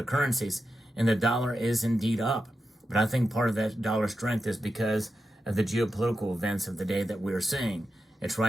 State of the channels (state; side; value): normal; both; correlation 0.89